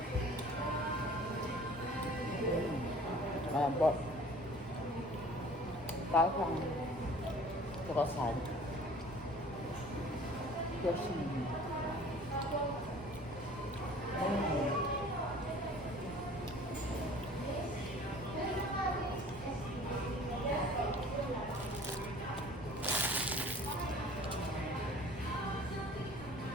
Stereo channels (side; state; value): both; normal; correlation 0.48